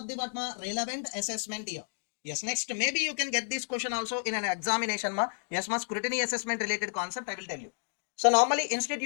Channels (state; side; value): silent; right; digital silence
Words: the what ma? Relevant assessment year. Yes, next, maybe you can get this question also in an examination ma. Yes ma, scrutiny assessment related concept I will tell you. So normally